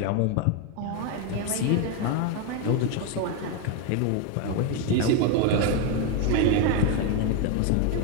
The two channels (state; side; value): different; both; correlation 0.02